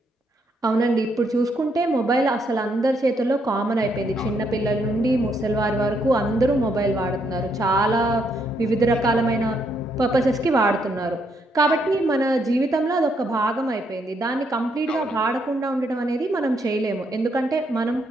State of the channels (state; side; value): normal; both; correlation 0.75